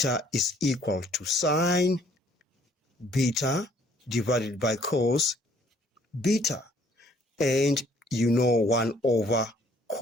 is equal to sine beta divided by cos beta. And you know 1 over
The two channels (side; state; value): both; normal; correlation 0.61